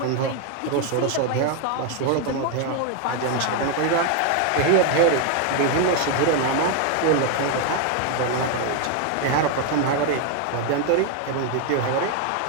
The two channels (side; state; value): both; different; correlation 0.01